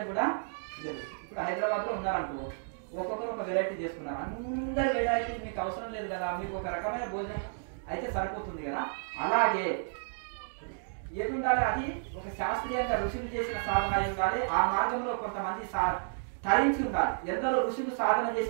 కూడా లేదు. ఇప్పుడు హైదరాబాద్ లో ఉన్నారనుకో, ఒక్కొక్కరు ఒక వెరైటీ చేసుకున్నారు. అందరి వెరైటీ మీకు అవసరం లేదు కదా, మీకు ఒక రకమైన భోజనం అయితే సరిపోతుంది కదా. అలాగే ఏది ఉండాలి, అది ఒక శాస్త్రీయంగా ఋషులు చేసిన సాధన అయి ఉండాలి. ఆ మార్గంలో కొంతమంది తరించి ఉండాలి. ఎందరో ఋషులు సాధన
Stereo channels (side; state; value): left; silent; digital silence